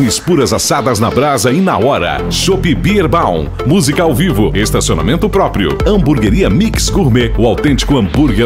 puras assadas na brasa e na hora. Chopp Bierbaum, música ao vivo, estacionamento próprio. Hamburgueria Mix Gourmet, o autêntico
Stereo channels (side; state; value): both; identical; correlation 1.00